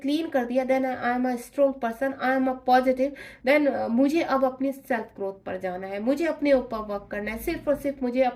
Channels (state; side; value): identical; both; correlation 1.00